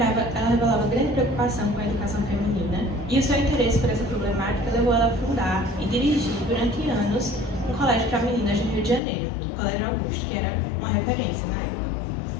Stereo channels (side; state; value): right; drops out; at 9.0 s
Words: grande preocupação com a educação feminina e o seu interesse por essa problemática levou ela a fundar e dirigir durante anos um colégio para meninas no Rio de Janeiro, o Colégio Augusto, que era uma referência na época.